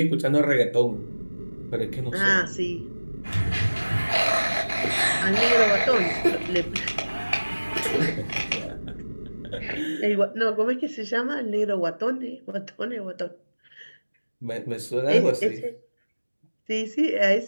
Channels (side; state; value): both; inverted; correlation -1.00